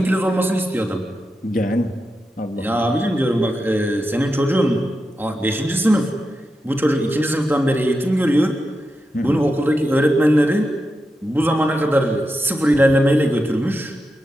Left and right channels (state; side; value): normal; both; correlation 0.88